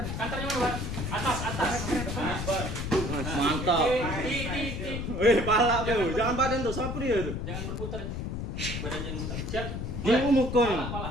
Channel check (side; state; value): left; noise; rumble, 4 dB below the sound